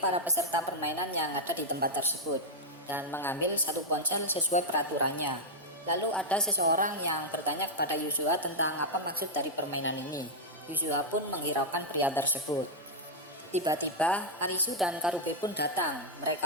para peserta permainan yang ada di tempat tersebut dan mengambil satu ponsel sesuai peraturannya. Lalu ada seseorang yang bertanya kepada Yuzuha tentang apa maksud dari permainan ini. Yuzuha pun menghiraukan pria tersebut. Tiba-tiba Arisu dan Karube pun datang.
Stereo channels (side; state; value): both; normal; correlation -0.04